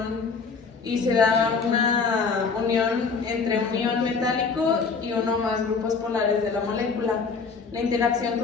y se da una unión entre un ion metálico y uno más grupos polares de la molécula. La interacción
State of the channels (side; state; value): right; quieter; 5.0 dB